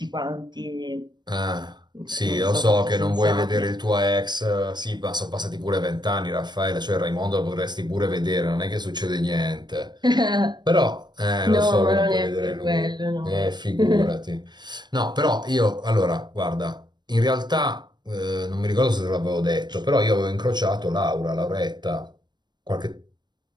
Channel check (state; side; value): late; left; 0.21 ms